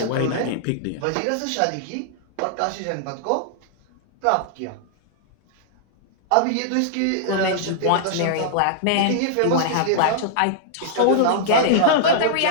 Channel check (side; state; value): both; different; correlation -0.01